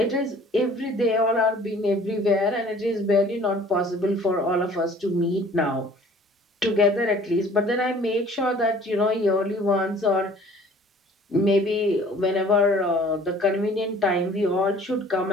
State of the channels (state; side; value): normal; both; correlation 0.51